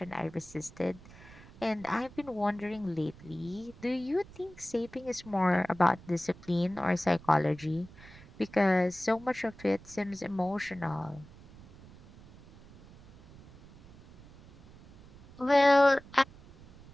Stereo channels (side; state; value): right; noise; rumble, 20 dB below the sound